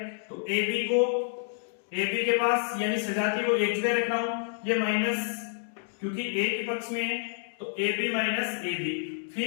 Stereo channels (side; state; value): right; silent; digital silence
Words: तो ए बी के पास यानी सजातीय को एक जगह रख रहा हूं, ये माइनस क्योंकि ए के पक्ष में है तो A B minus A B,